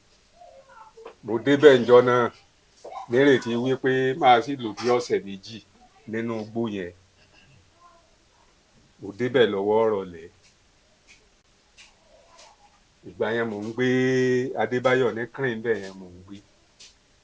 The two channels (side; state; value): both; identical; correlation 1.00